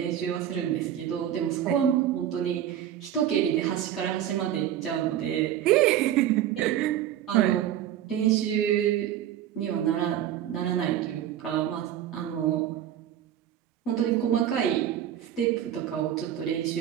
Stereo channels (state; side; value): quieter; left; 10.9 dB